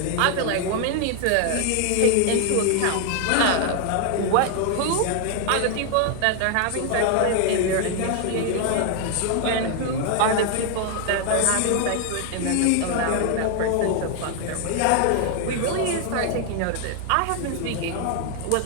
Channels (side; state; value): both; different; correlation 0.00